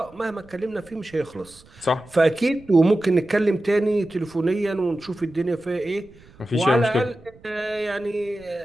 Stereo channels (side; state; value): right; noise; rumble, 25 dB below the sound